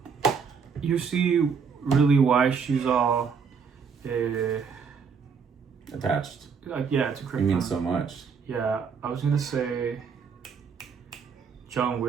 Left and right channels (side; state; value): left; quieter; 6.1 dB